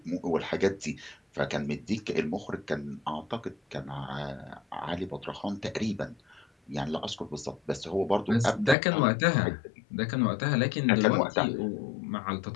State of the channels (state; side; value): drops out; right; at 8.8 s